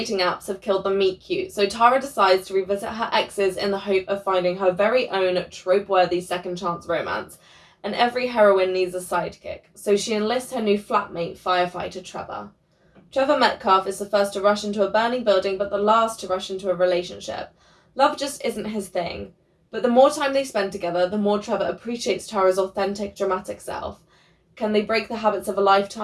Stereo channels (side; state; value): both; identical; correlation 1.00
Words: apps have killed the meet cute, so Tara decides to revisit her exes in the hope of finding her very own trope-worthy second chance romance. And every heroine needs a sidekick, so she enlists her new flatmate, firefighter Trevor. Trevor Metcalf is the first to rush into a burning building, but the last to rush into a relationship. Love just isn't his thing. But the more time they spend together, the more Trevor appreciates Tara's authentic, dramatic self. Can they break the habits of a